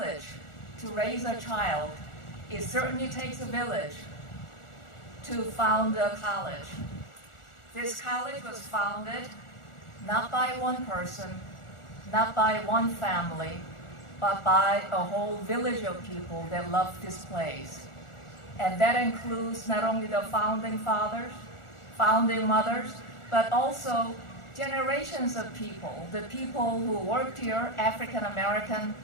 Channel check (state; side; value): late; right; 1.4 ms